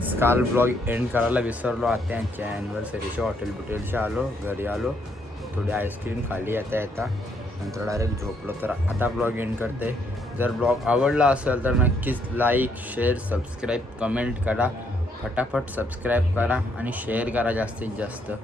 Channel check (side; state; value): both; normal; correlation 0.72